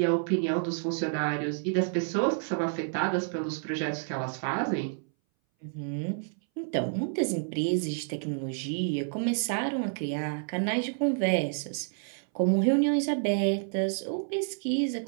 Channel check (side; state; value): left; silent; 58 dB below the other